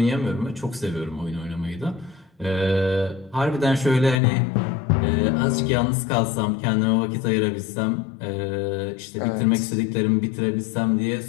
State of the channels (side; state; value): right; drops out; at 4.2 s